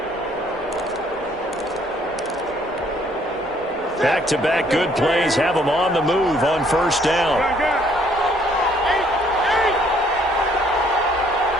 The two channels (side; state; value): both; normal; correlation 0.64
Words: Back-to-back good plays have them on the move on first down.